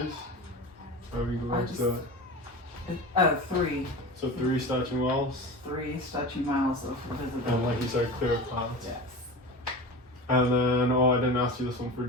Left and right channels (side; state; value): both; normal; correlation 0.30